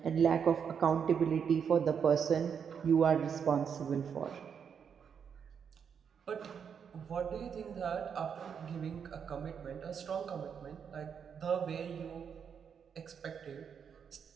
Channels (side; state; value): left; quieter; 7.2 dB